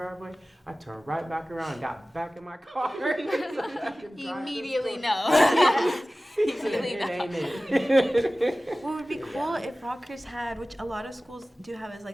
I turned right back around and got back in my car. Immediately no. Immediately It no. ain't it. What would be cool if Rockhurst had, which a lot of schools do have, is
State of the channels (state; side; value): normal; both; correlation 0.97